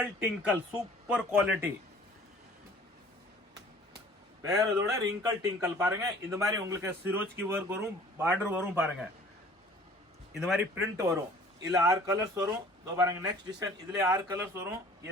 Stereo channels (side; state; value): both; normal; correlation 0.50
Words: டிங்கிள் சூப்பர் குவாலிட்டி. வேற இதோட ரிங்கிள் டிங்கிள் பாருங்க. இந்த மாதிரி உங்களுக்கு சிரோஜ்கி ஒர்க் வரும், பார்டர் வரும் பாருங்க. இந்த மாதிரி பிரிண்ட் வரும். இதுல 6 கலர்ஸ் வரும். இதோ பாருங்க நெக்ஸ்ட் டிசைன். இதுல 6 கலர்ஸ் வரும்.